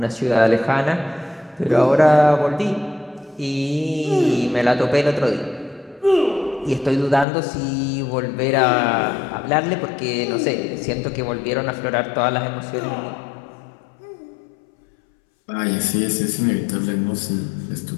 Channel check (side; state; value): right; drops out; at 7.2 s